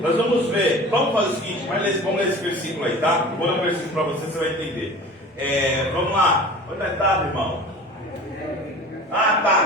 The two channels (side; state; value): both; normal; correlation 0.39